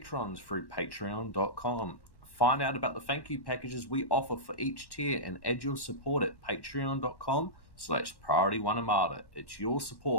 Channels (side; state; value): right; late; 1.1 ms